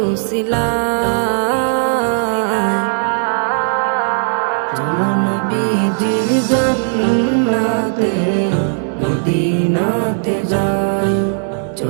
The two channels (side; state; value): left; silent; 65 dB below the other